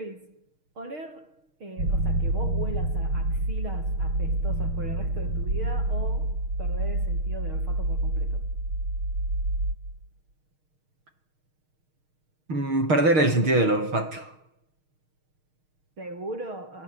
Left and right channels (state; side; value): late; left; 6.5 ms